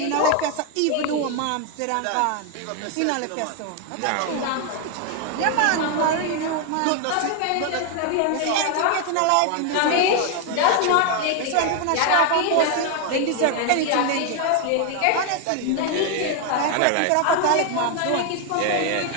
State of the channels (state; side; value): different; both; correlation 0.00